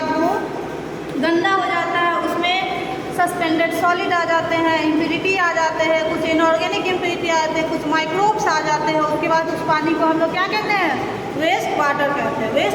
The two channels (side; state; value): both; identical; correlation 1.00